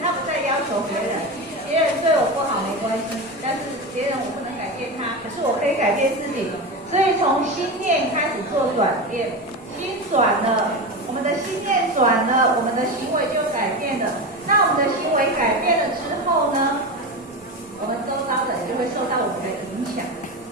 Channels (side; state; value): both; normal; correlation 0.21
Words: 他不再要求别人，别人对我不好没关系，但是别人我不能改变他，可是我可以改变自己。所以从心念开始做转变，心转了，我们的心念转了，我们的行为就改变了。那我们的行为改变了之后呢，我们周遭的人就会受到我们的影响。